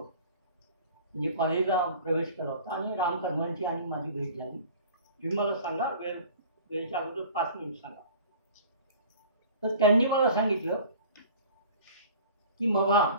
म्हणजे कॉलेजला प्रवेश केला होता आणि रामकर्मांची आणि माझी भेट झाली. तुम्ही मला सांगा, वेळेच्या अगोदर 5 मिनिट सांगा. तर त्यांनी मला सांगितलं की मग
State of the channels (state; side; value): inverted; both; correlation -0.45